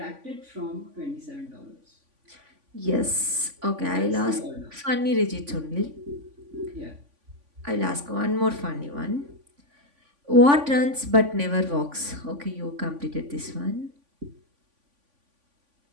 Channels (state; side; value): late; left; 3.5 ms